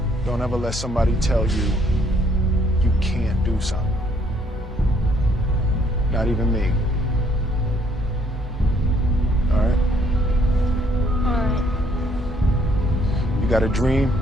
Don't ever let somebody tell you you can't do something. Not even me. All right? All right. You got a dream,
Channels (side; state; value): both; normal; correlation 0.66